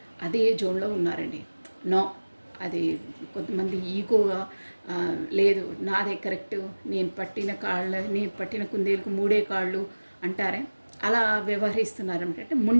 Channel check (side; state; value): both; inverted; correlation -1.00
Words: అదే జోన్లో ఉన్నారండి. నో, అది కొంతమంది ఈగోగా లేదు నాదే కరెక్ట్, నేను పట్టిన కుందేలకు 3 కాళ్ళు అంటారే, అలా వ్యవహరిస్తున్నారు. అంటే